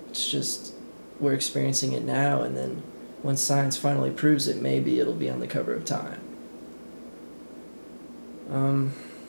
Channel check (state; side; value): inverted; both; correlation -1.00